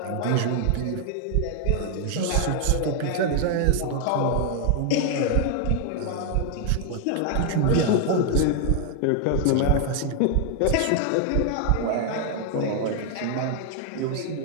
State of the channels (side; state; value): both; different; correlation 0.00